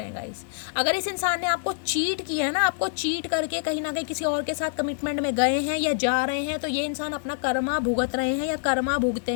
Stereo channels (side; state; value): right; silent; digital silence